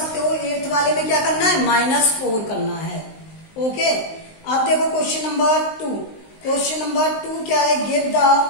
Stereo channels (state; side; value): late; right; 19 ms